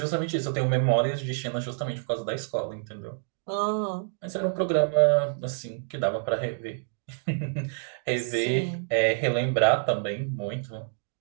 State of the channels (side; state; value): left; silent; digital silence